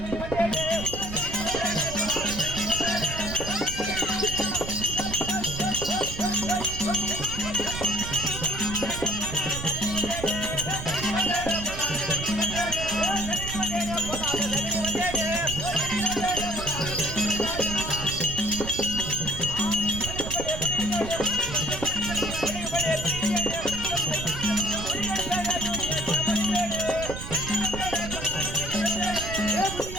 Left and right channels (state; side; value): noise; right; rumble, 8 dB below the sound